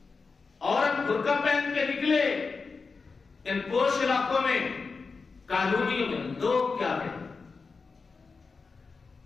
عورت برقع پہن کے نکلے ان پوش علاقوں میں، کالونیوں میں، لوگ کیا کہیں؟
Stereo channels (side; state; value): right; quieter; 4.6 dB